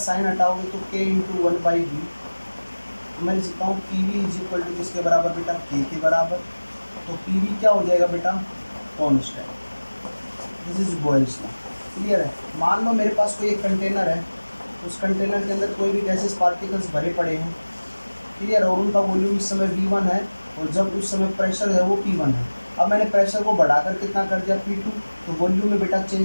हटाओगे तो k into one by V. मैं लिख सकता हूँ P V is equal to किसके बराबर बेटा? k के बराबर। तो पी वी क्या हो जाएगा बेटा? Constant. This is Boyle's law. Clear है? मान लो मेरे पास कोई एक कंटेनर है, उस कंटेनर के अंदर कोई भी गैसेस पार्टिकल्स भरे पड़े हैं। क्लियर है? और उनका वॉल्यूम इस समय V1 है और जब उस समय प्रेशर है वो P1 है। अब मैंने प्रेशर को बढ़ाकर कितना कर दिया? P2। तो वॉल्यूम में बेटा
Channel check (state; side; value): inverted; both; correlation -1.00